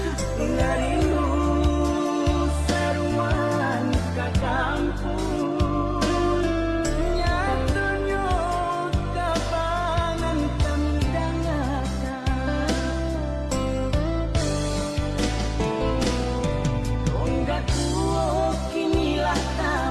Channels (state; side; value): identical; both; correlation 1.00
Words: ngarindu saruan ka kampung nyatunya kabanan kami dangakan tonggak tuo kinilah